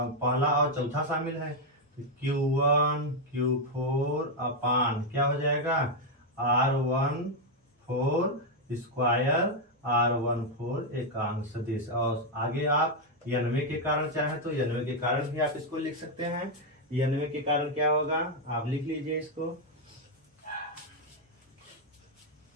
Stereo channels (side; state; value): both; normal; correlation 0.01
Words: पहला और चौथा शामिल है तो Q1 Q4 अपान क्या हो जाएगा R14 स्क्वायर R14 एकांक सदिश। और आगे आप n वें के कारण चाहे तो n वें के कारण भी आप इसको लिख सकते हैं। n वें के कारण क्या होगा, आप लिख लीजिए इसको